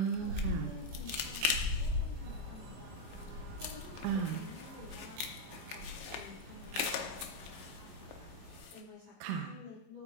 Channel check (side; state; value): left; late; 36 ms